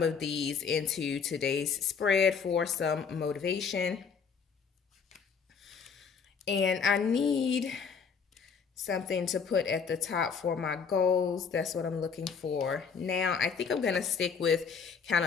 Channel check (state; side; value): quieter; right; 6.1 dB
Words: of these into today's spread for some motivation. And I need something to put at the top for my goals. That's what I'm looking for. Now, I think I'm going to stick with kind